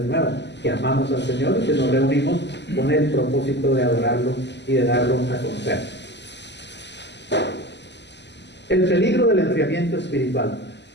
nuevo, que amamos al Señor y que nos reunimos con el propósito de adorarlo y de darlo a conocer. El peligro del enfriamiento espiritual.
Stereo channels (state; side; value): late; right; 0.50 ms